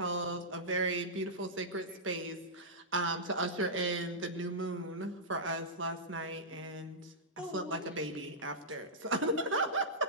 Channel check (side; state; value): both; normal; correlation -0.14